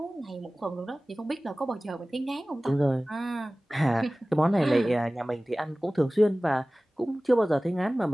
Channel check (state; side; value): normal; both; correlation 0.98